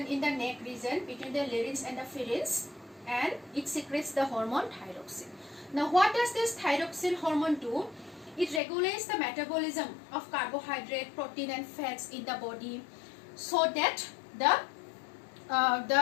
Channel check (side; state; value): right; drops out; at 8.6 s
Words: in the neck region between the larynx and the pharynx, and it secretes the hormone thyroxine. Now, what does this thyroxine hormone do? It regulates the metabolism of carbohydrate, protein and fats in the body, so that